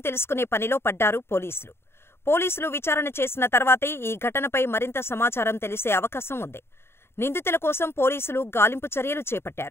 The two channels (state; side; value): late; right; 0.12 ms